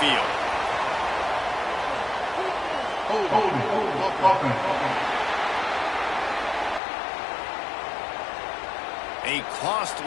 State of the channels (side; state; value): right; drops out; at 6.8 s